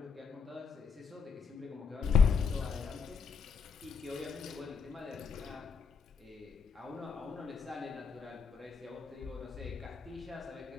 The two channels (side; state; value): right; quieter; 5.5 dB